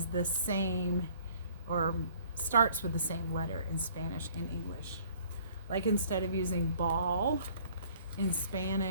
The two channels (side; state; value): both; inverted; correlation -0.57